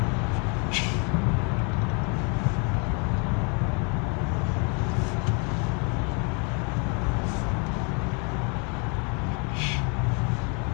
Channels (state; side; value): quieter; right; 34.7 dB